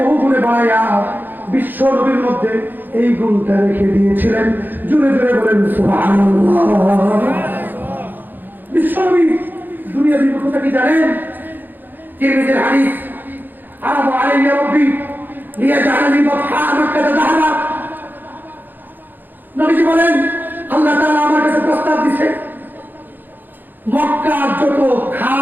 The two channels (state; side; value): late; left; 0.089 ms